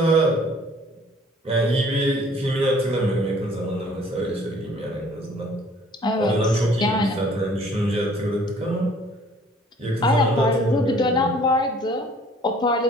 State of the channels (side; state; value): both; normal; correlation 0.55